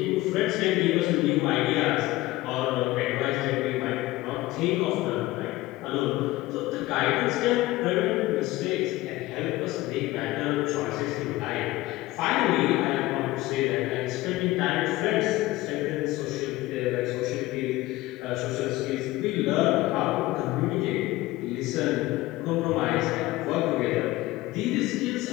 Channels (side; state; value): right; quieter; 18.3 dB